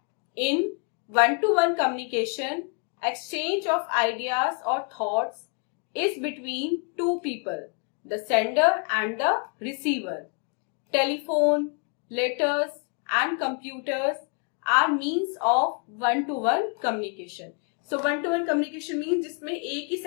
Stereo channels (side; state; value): right; quieter; 38.1 dB